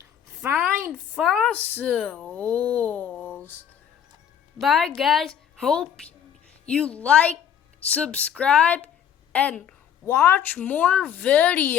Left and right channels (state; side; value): quieter; right; 8.9 dB